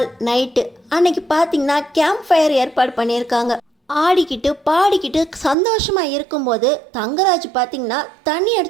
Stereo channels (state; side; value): drops out; left; at 5.6 s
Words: நைட்டு அன்னைக்கு பார்த்தீங்கன்னா கேம்ப் ஃபயர் ஏற்பாடு பண்ணியிருக்காங்க. ஆடிக்கிட்டு பாடிக்கிட்டு சந்தோஷமாக இருக்கும்போது தங்கராஜ் பார்த்தீங்கன்னா தண்ணி